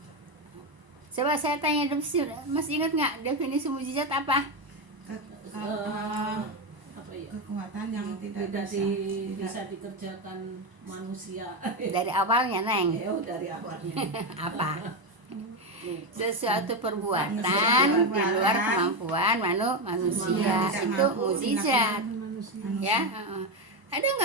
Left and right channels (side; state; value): left; late; 1.0 ms